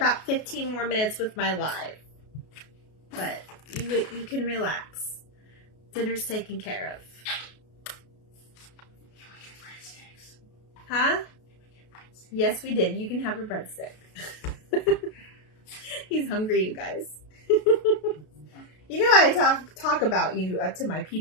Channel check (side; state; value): right; late; 33 ms